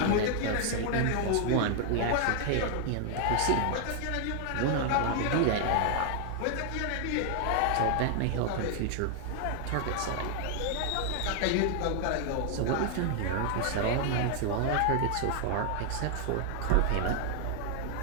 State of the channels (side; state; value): both; different; correlation 0.00